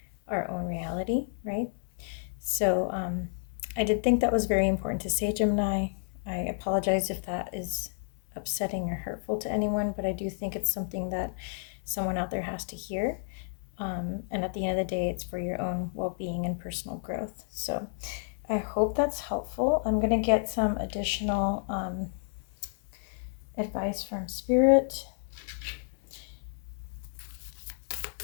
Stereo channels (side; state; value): right; silent; 57 dB below the other